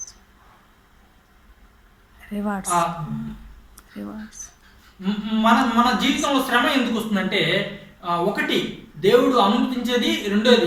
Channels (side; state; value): both; identical; correlation 1.00